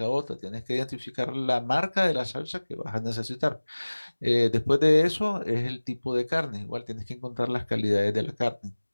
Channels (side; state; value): both; inverted; correlation -1.00